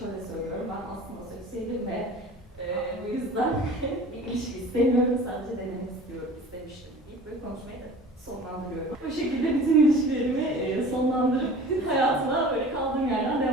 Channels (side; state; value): both; normal; correlation 0.42